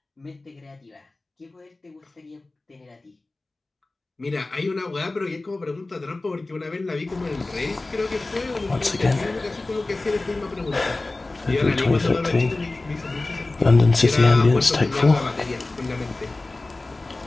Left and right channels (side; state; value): right; quieter; 3.1 dB